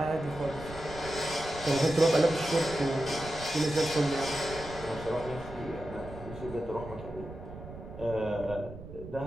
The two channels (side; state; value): right; noise; rumble, 13 dB below the sound